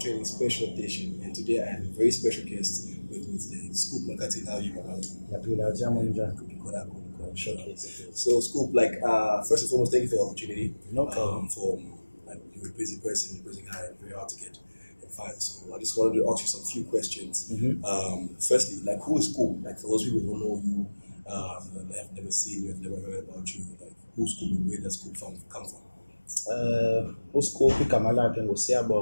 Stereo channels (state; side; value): inverted; both; correlation -1.00